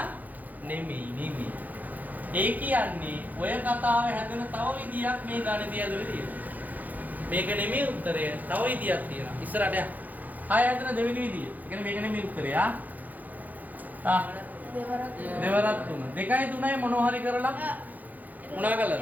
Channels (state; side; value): late; left; 0.081 ms